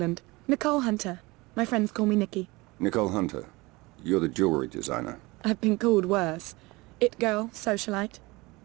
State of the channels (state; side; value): quieter; left; 22.9 dB